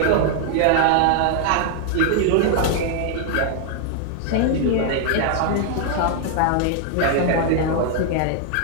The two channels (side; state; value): both; different; correlation 0.00